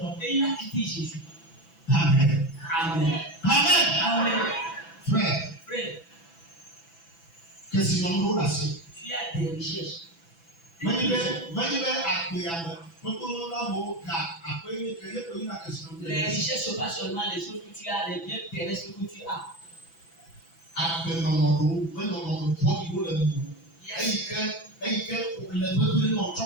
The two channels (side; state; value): right; late; 6.0 ms